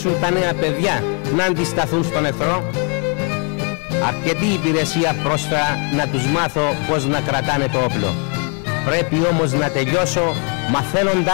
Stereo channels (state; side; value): quieter; right; 37.7 dB